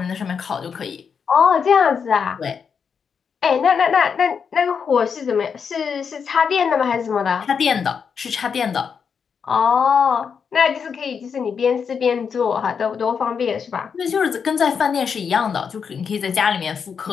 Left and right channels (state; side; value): quieter; right; 6.4 dB